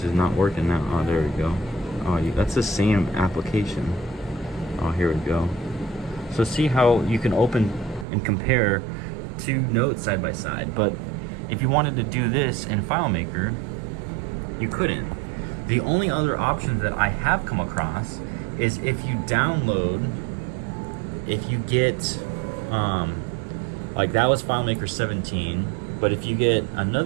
is not working now. Oh, there we go. Oh, that's the same application. Oh, here we go. So see how you can open and compare two notes side by side, but if you wanted to do this in FileMaker, you couldn't. The only other options that I have come across is if you download, if you get, like that was FileMaker 17, but if you get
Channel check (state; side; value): drops out; left; at 8.1 s